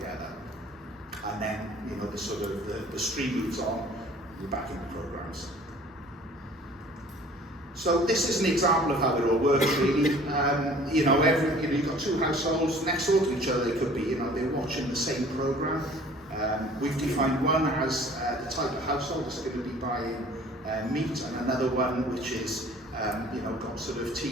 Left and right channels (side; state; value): both; normal; correlation 0.50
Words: And then, the stream moves on, you're back in the programs. So this is an example of how it all works, really. You've got two households next door to each other. They could be, they're watching the same program. We've defined one as the type of household that's going to be buying meat, and another one which is, got sort of